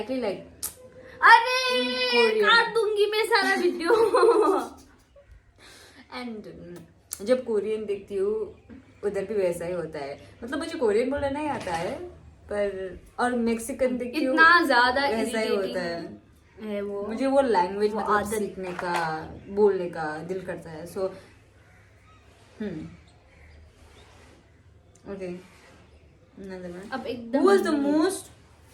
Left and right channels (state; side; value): identical; both; correlation 1.00